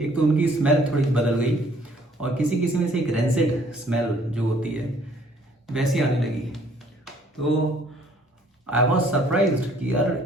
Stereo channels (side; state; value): both; normal; correlation 0.60